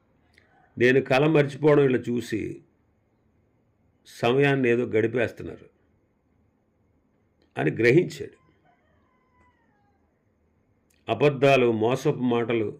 నేను కల మర్చిపోవడం వీళ్ళు చూసి సమయాన్ని ఏదో గడిపేస్తున్నారు అని గ్రహించాడు. అబద్ధాలు, మోసపు మాటలు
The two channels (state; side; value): identical; both; correlation 1.00